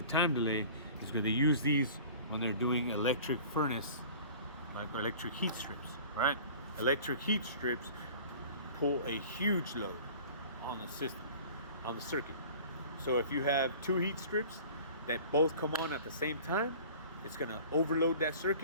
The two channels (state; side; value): inverted; both; correlation -0.44